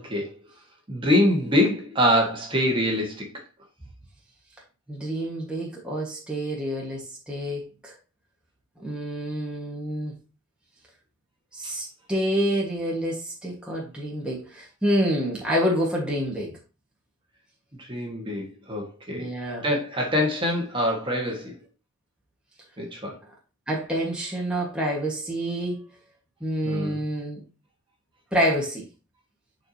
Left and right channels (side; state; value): both; normal; correlation 0.44